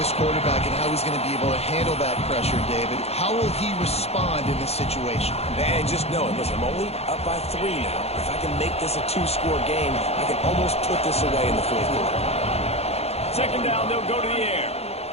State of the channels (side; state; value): right; late; 0.30 ms